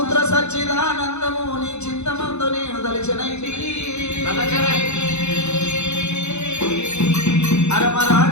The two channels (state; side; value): late; right; 0.81 ms